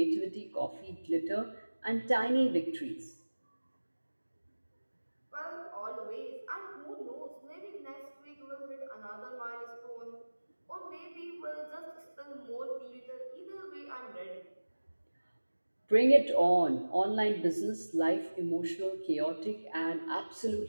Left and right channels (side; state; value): both; inverted; correlation -1.00